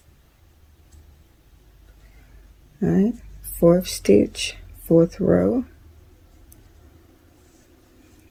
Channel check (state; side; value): identical; both; correlation 1.00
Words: All right, fourth stitch, fourth row,